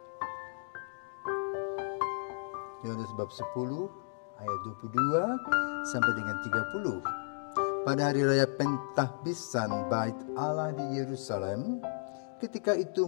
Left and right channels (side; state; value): right; silent; digital silence